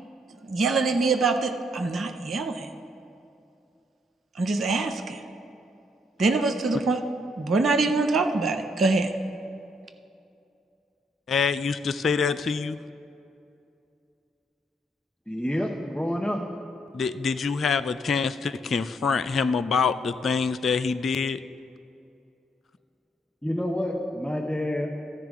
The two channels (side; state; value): both; normal; correlation 0.72